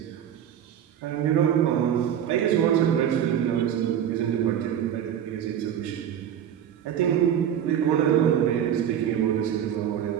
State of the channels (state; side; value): quieter; left; 9.6 dB